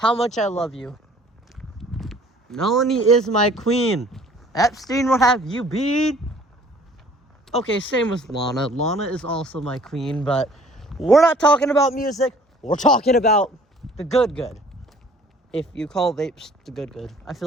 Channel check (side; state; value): both; normal; correlation 0.53